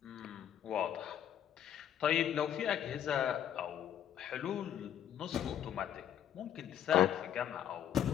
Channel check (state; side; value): quieter; right; 10.1 dB